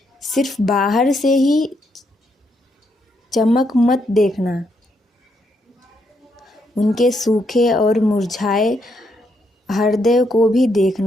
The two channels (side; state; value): both; normal; correlation 0.77